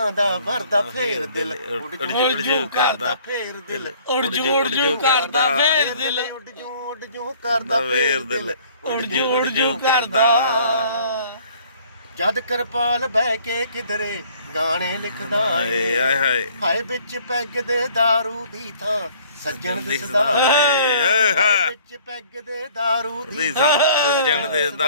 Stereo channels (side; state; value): both; inverted; correlation -0.56